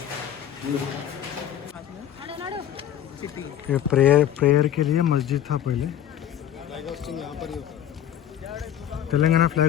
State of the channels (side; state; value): right; quieter; 10.6 dB